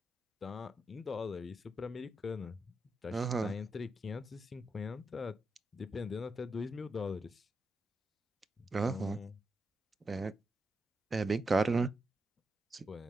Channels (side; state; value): both; normal; correlation 0.85